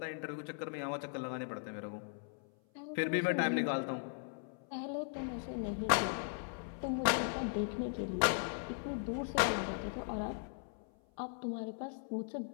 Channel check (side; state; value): right; silent; 52 dB below the other